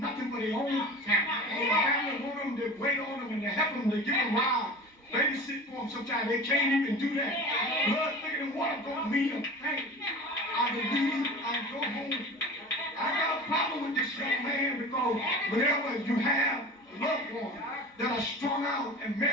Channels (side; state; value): both; normal; correlation 0.36